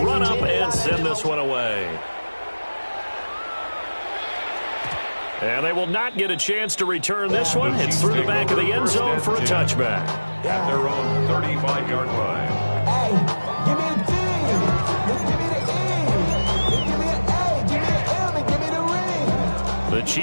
run up and send this one away. And they will not get a chance to return this one. It's through the back of the end zone for a touchback. At their own 35-yard line. Hey, give me a D. Give me the E. Give me an A. Give me an M. And give me the ring. The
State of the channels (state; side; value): inverted; both; correlation -1.00